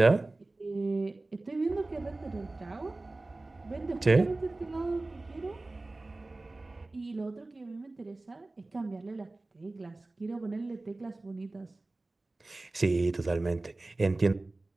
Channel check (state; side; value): quieter; left; 3.0 dB